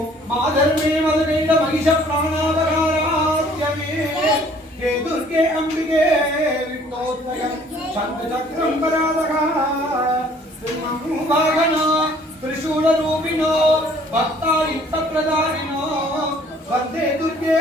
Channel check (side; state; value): both; normal; correlation 0.57